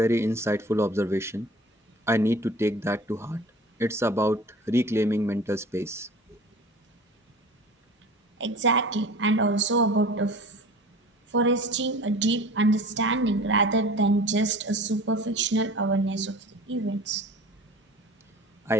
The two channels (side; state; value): both; normal; correlation 0.42